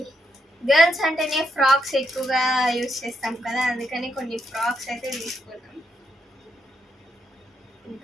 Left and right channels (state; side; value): normal; both; correlation 0.79